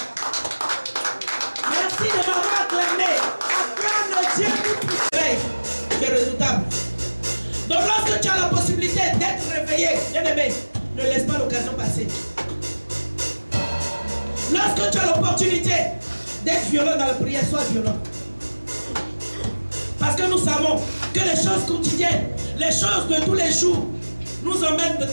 Merci de m'avoir acclamé. Acclame le Dieu Tout-Puissant. C'est redoutable. Donc lorsque tu as la possibilité d'être réveillé, bien aimé, ne laisse pas l'occasion passer. Lorsque tu as l'opportunité d'être violent dans la prière, sois violent. Parce que nous savons que les choses quotidiennes, les choses de tous les jours, nous emmènent de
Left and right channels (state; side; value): inverted; both; correlation -1.00